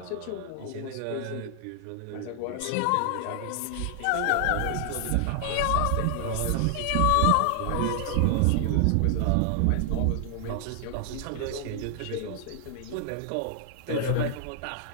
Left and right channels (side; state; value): both; different; correlation 0.00